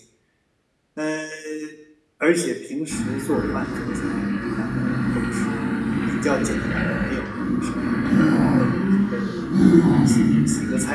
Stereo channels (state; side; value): identical; both; correlation 1.00